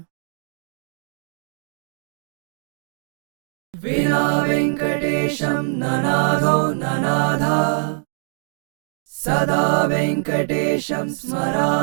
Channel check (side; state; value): left; silent; digital silence